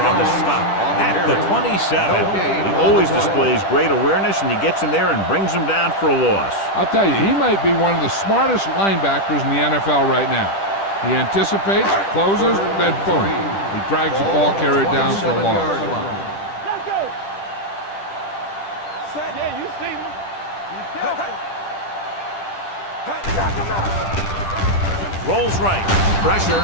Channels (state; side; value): late; right; 10 ms